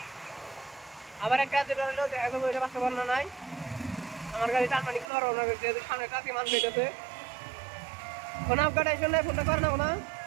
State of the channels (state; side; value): drops out; left; at 5.1 s